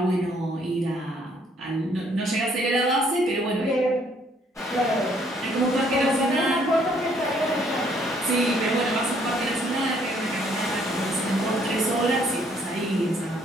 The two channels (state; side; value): normal; both; correlation 0.65